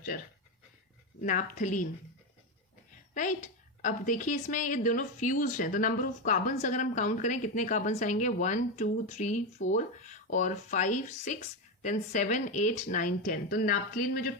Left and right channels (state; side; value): normal; both; correlation 0.11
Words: नैप्थलीन, राइट। अब देखिए इसमें ये दोनों फ्यूज्ड हैं तो नंबर ऑफ कार्बन्स अगर हम काउंट करें कितने कार्बन्स आएंगे, 1 2 3 4 और 5 6 देन 7 8 9 10। तो नैप्थलीन में जो